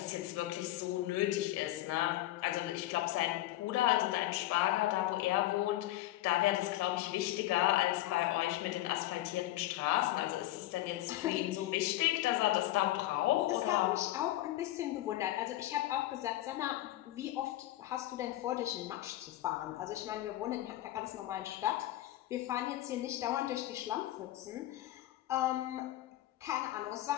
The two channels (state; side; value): quieter; right; 15.5 dB